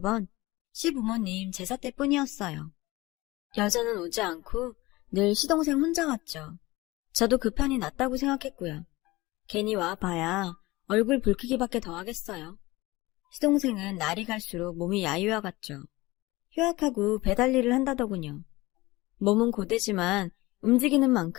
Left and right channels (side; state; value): right; quieter; 20.5 dB